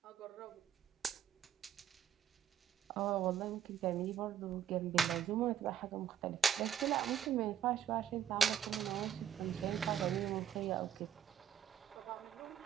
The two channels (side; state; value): left; quieter; 9.3 dB